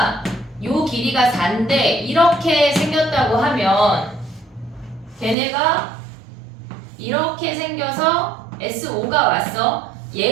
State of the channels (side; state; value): left; drops out; at 5.4 s